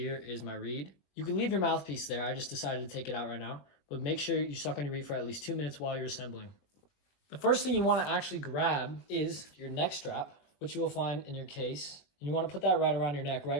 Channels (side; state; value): right; late; 21 ms